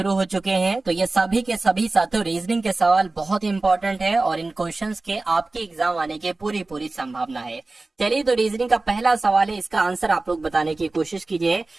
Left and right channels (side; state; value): left; quieter; 3.3 dB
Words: हो चुके हैं। तो ये सभी के सभी साथियों रीजनिंग के सवाल बहुत इंपॉर्टेंट है और इन क्वेश्चंस के आपके एग्जाम आने की पूरी पूरी संभावना है। चलिए तो रीजनिंग का पहला सवाल है, इसका आंसर आप लोग बताने की कोशिश कीजिए।